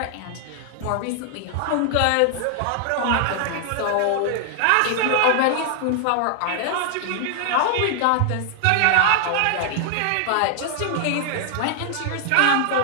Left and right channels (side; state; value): both; different; correlation 0.00